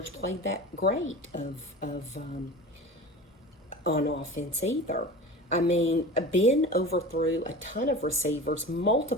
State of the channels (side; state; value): both; normal; correlation 0.34